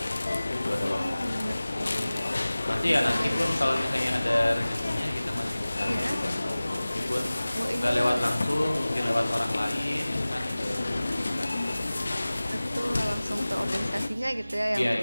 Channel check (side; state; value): both; inverted; correlation -0.98